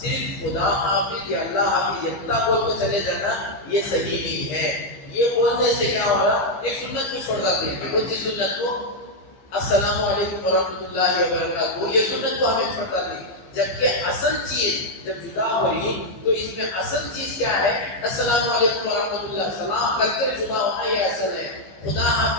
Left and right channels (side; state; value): right; late; 15 ms